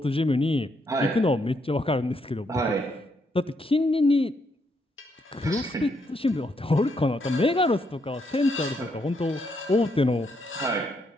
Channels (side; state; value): both; normal; correlation 0.76